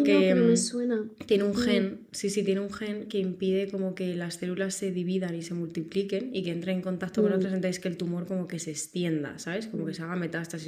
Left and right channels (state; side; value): identical; both; correlation 1.00